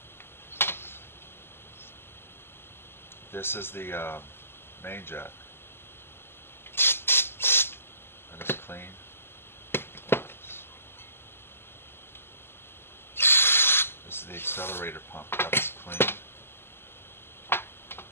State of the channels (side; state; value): right; late; 0.11 ms